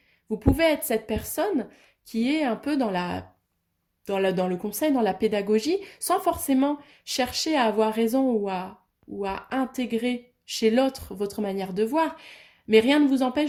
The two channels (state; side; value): identical; both; correlation 1.00